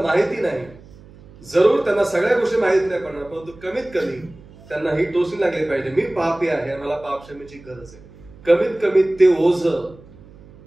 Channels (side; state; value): right; noise; hum, 22 dB below the sound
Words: माहिती नाही. जरूर त्यांना सगळ्या गोष्टी माहित नाही पडणार, परंतु कमीत कमी त्यांना ही टोचणी लागली पाहिजे, मी पापी आहे, मला पापक्षमेची गरज आहे. कमीत कमी ते ओझ,